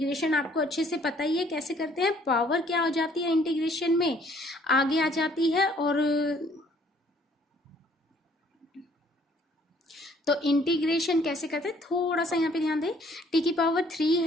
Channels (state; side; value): normal; both; correlation 0.61